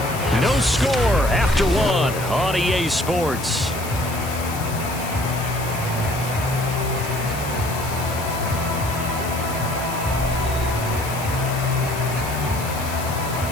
No score after 1 on EA Sports.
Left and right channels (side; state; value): left; noise; hiss, 11 dB below the sound